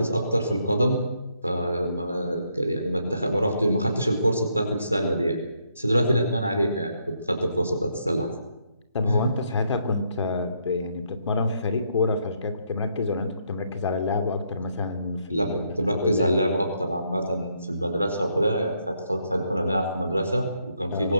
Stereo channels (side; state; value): both; inverted; correlation -0.74